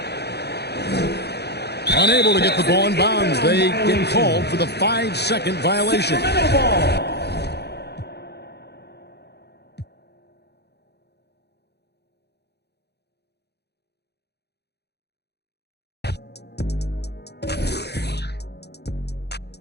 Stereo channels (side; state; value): right; late; 0.48 ms